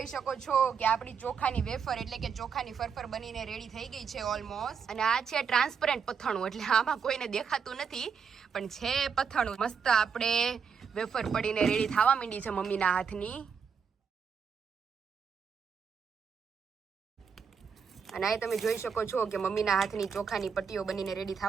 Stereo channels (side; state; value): left; quieter; 6.4 dB